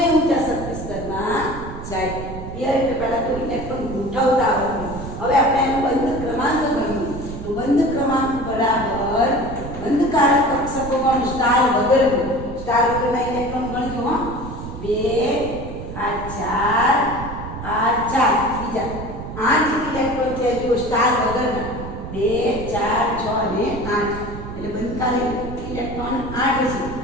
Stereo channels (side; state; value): right; noise; rumble, 9 dB below the sound